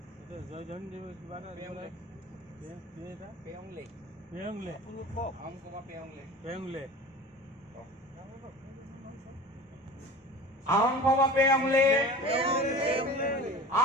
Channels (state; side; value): normal; both; correlation 0.37